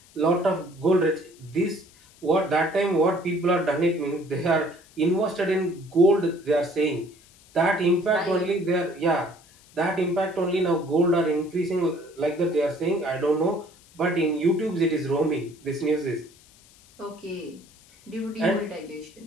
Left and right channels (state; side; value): noise; left; hiss, 27 dB below the sound